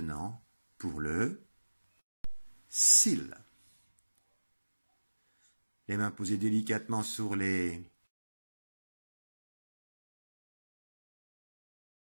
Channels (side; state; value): both; inverted; correlation -1.00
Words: pour le seal. Les mains posées délicatement sur les